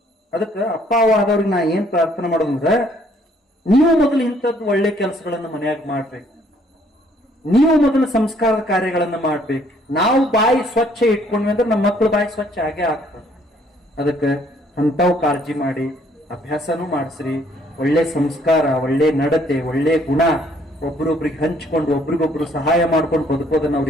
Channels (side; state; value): both; normal; correlation 0.64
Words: ಅದಕ್ಕ ಅಪ್ಪ ಆದವ್ರಿಗೆ ನಾ ಏನ್ ಪ್ರಾರ್ಥನೆ ಮಾಡೋದಂದ್ರ, ನೀವು ಮೊದಲು ಇಂಥದ್ದು ಒಳ್ಳೆ ಕೆಲಸಗಳನ್ನ ಮನೆಯಾಗ ಮಾಡ್ಬೇಕು. ನೀವು ಮೊದಲು ಸಂಸ್ಕಾರದ ಕಾರ್ಯಗಳನ್ನ ಮಾಡ್ಬೇಕು. ನಾವು ಬಾಯಿ ಸ್ವಚ್ಛ ಇಟ್ಕೊಂಡ್ವಿ ಅಂದ್ರೆ ನಮ್ಮ ಮಕ್ಕಳು ಬಾಯಿ ಸ್ವಚ್ಛ ಆಗೇ ಆಗ್ತದೆ. ಅದಕ್ಕೆ ಅಂಥವು ಕಾಳಜಿ ಮಾಡಿ ಅಭ್ಯಾಸನೂ ಮಾಡಿಸ್ರಿ. ಒಳ್ಳೆ ಸಂಸ್ಕಾರ, ಒಳ್ಳೆ ನಡತೆ, ಒಳ್ಳೆ ಗುಣ ಒಬ್ರೊಬ್ರಿಗೆ ಹಂಚ್ಕೊಂಡು ಒಬ್ರಿಗೊಬ್ರು ಸಹಾಯ ಮಾಡ್ಕೊಂಡು ಬದುಕೋದನ್ನ